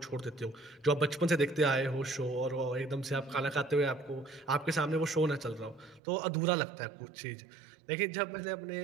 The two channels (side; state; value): left; drops out; at 6.0 s